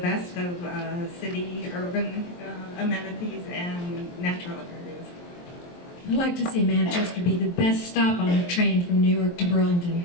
of city, urban amenities and natural areas. I'd like to see Manchester be the best stop on a train from New York to Burlington.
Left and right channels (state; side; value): late; right; 23 ms